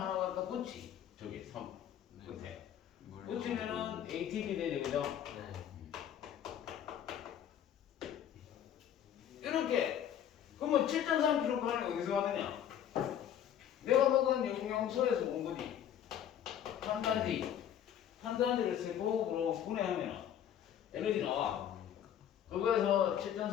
갖다 붙이. 저기 3 끝에. 붙이면은 ATP 되죠, 그죠? 이렇게. 그러면 7.3kcal이 어디서 왔느냐? 내가 먹은 영양소에서 온 거지. 탄단지를 세포로 분해하면 에너지 나와. 그거에서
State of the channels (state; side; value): quieter; right; 9.8 dB